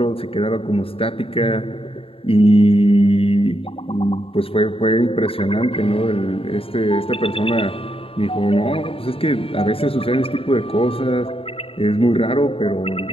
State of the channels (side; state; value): right; late; 0.27 ms